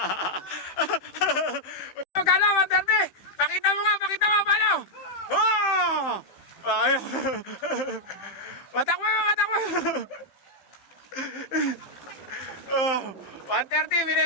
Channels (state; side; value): late; right; 15 ms